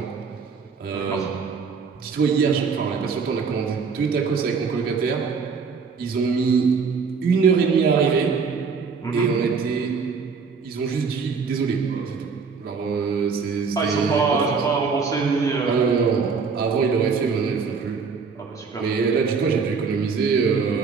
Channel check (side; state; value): left; quieter; 5.4 dB